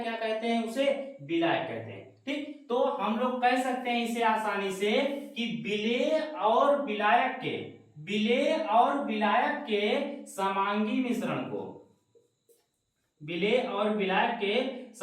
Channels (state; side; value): identical; both; correlation 1.00